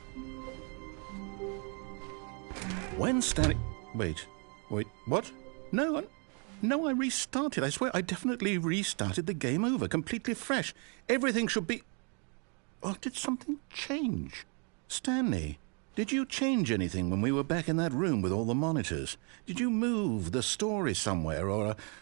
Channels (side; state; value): left; quieter; 36.9 dB